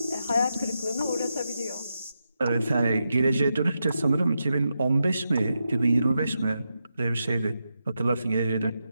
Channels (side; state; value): both; inverted; correlation -0.87